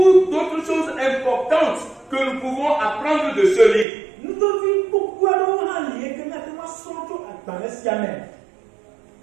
d'autres choses importantes que nous pouvons apprendre de ce livre.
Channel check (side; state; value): left; drops out; at 3.9 s